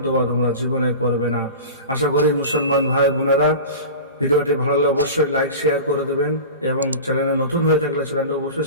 দোয়া তোমরা জীবনে করবে না। আশা করি মুসলমান ভাই বোনেরা ভিডিওটি ভালো লাগলে অবশ্যই লাইক শেয়ার করে দেবেন এবং চ্যানেলে নতুন হয়ে থাকলে চ্যানেলটা অবশ্যই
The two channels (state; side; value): inverted; both; correlation -0.32